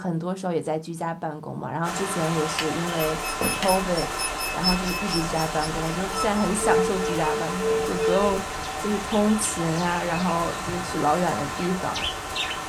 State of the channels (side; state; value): both; identical; correlation 1.00